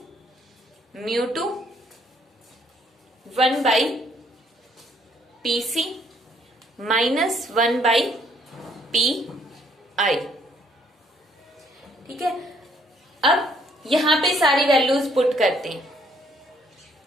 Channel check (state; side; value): normal; both; correlation 0.66